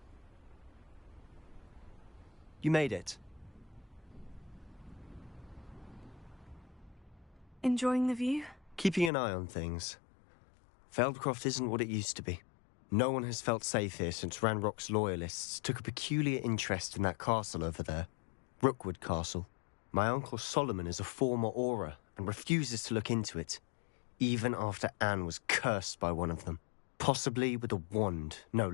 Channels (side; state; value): right; drops out; at 9.1 s